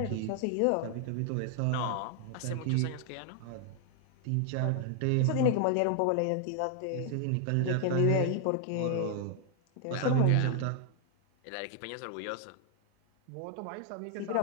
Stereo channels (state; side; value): different; both; correlation 0.00